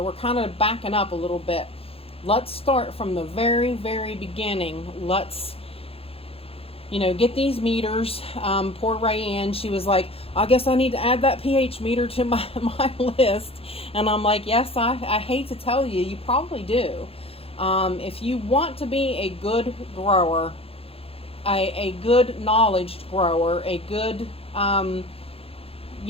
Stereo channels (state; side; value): late; right; 0.28 ms